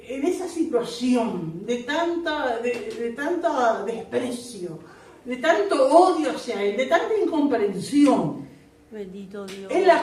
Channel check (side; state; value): both; identical; correlation 1.00